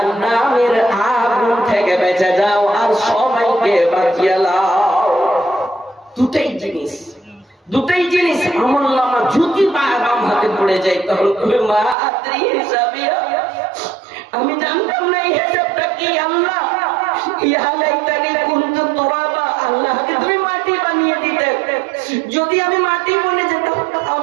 আগুন থেকে বেঁচে যাও, আর সবাইকে বাঁচিয়ে লাও। দুটাই জিনিস, দুটাই জিনিস। আমলনামা যদি বাম হাতে পড়ে যায়, তখন তুমি মা আদ্রি হিসাবিয়া, আমি জানতাম না এই হিসাবটা কি। আল্লাহ, ইয়া লাইতানি কুনতু তুরাবা, আল্লাহকে তুমি মাটি বানিয়ে দিতে। যদি আমি মাটি বনে যেতাম,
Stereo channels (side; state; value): left; drops out; at 12.0 s